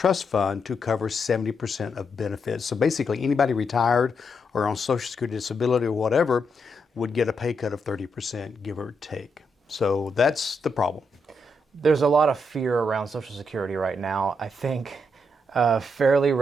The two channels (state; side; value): normal; both; correlation 0.80